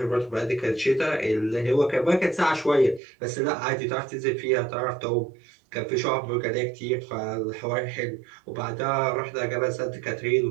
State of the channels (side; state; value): left; drops out; at 3.0 s